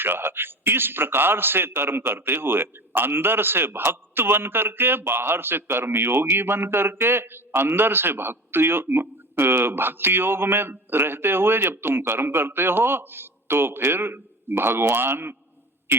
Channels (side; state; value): both; normal; correlation 0.33